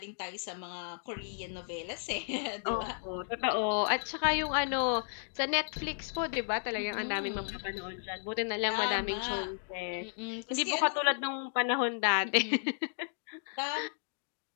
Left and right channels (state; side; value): silent; right; digital silence